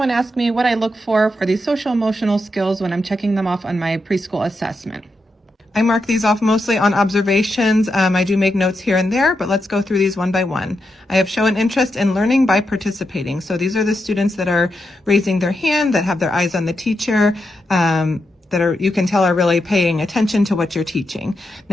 ask me what I look for these social emotional skills when I'm checking them off on my preschool assessment. I mark these off mostly on observations. I do make notes here and there, but let's go through these one by one. I have shown interest in learning by participating. So these are the students that are raising their hand, that have their eyes on the teacher, that are, you can tell, are really paying attention to what you're teaching.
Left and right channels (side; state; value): both; normal; correlation 0.85